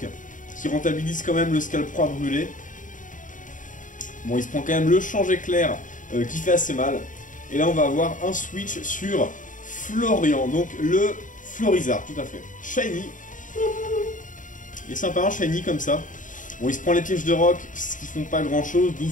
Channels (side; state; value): right; late; 0.38 ms